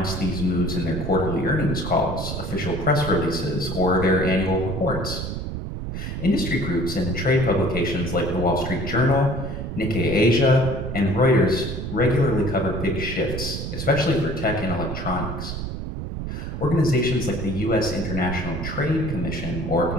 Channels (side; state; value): right; noise; rumble, 5 dB below the sound